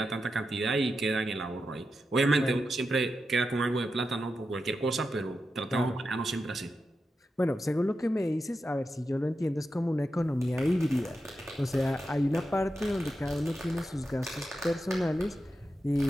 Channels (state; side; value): normal; both; correlation 0.89